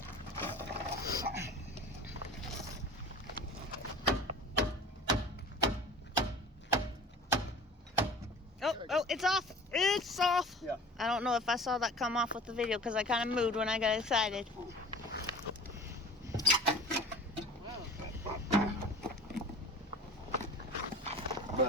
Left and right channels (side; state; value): both; normal; correlation 0.41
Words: Oh, it's off. It's off. Yeah. I don't know if I saw that come off with the video because I kind of moved when I got excited.